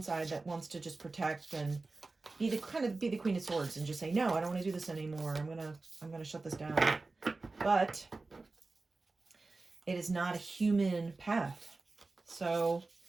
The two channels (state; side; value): quieter; left; 3.5 dB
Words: side that wants to just protect and be the Queen of Swords and just say, no, I don't want to do this anymore. I'm gonna shut this down. But it is not a human path. So